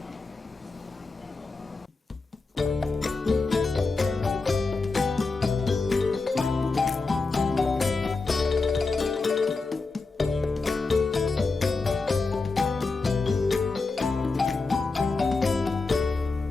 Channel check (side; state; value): right; quieter; 3.9 dB